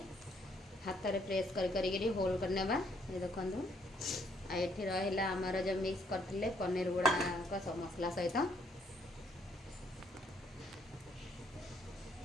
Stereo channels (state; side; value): normal; both; correlation 0.69